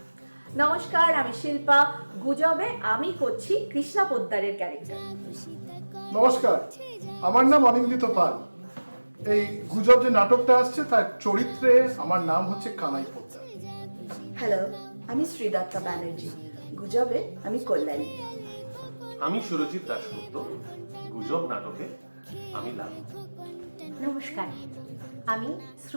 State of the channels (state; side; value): inverted; both; correlation -1.00